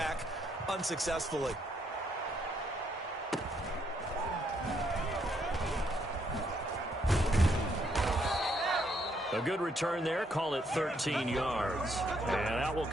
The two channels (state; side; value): normal; both; correlation 0.72